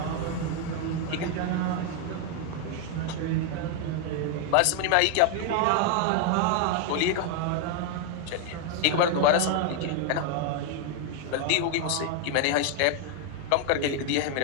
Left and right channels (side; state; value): both; different; correlation 0.01